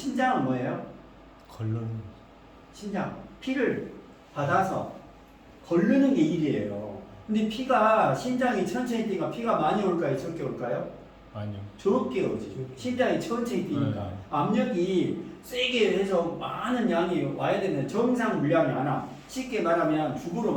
뭐예요? 심장 피를 받아서 걸르는 게 일이에요. 근데 피가 심장이 천천히 뛰니까 피가 많이 올까요? 적게 올까요? 아니요. 적게 오지. 심장이 천천히 뛰니까 압력이 세게 해서 많은 양이 와야 되는 정상 물량이 안 와. 쉽게 말하면 죽으로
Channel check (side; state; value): both; identical; correlation 1.00